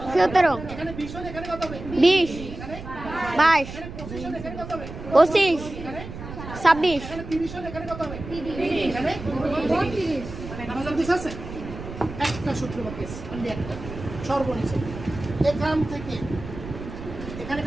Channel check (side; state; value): right; noise; rumble, 11 dB below the sound